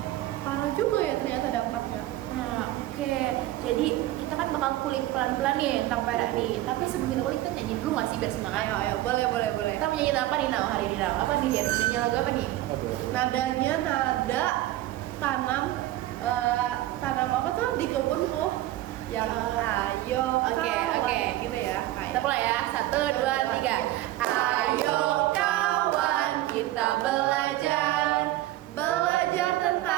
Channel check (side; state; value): left; quieter; 15.6 dB